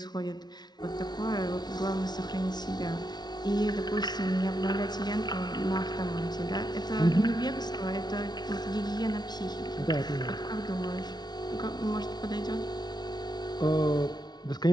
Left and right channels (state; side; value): late; right; 0.20 ms